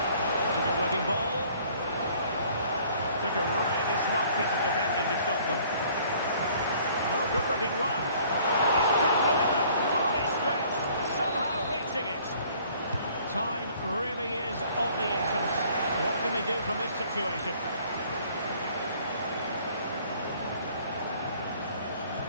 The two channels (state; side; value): inverted; both; correlation -0.57